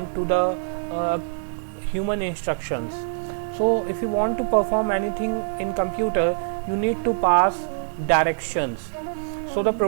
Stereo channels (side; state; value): left; silent; 59 dB below the other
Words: to the human instructions. So if you want to perform anything in computer, you need to pass directions. So the